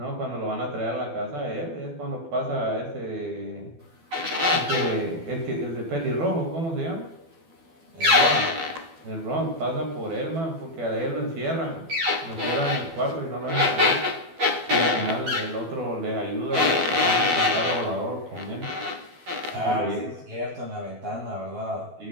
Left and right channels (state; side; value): late; left; 12 ms